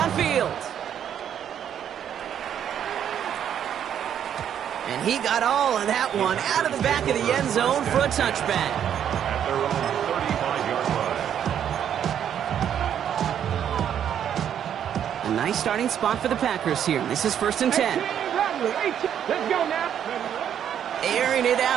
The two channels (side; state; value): left; quieter; 9.3 dB